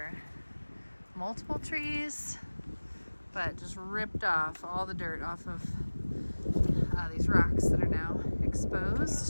multiple trees, but just ripped off all the dirt off of these rocks that are now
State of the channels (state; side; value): inverted; both; correlation -1.00